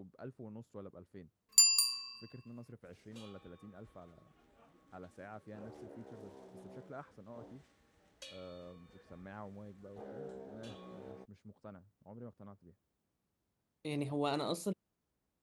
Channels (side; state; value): both; identical; correlation 1.00